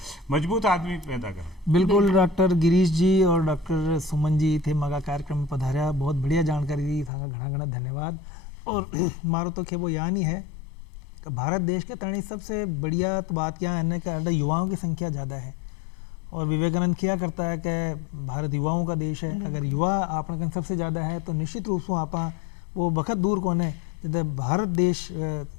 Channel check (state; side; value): drops out; right; at 7.1 s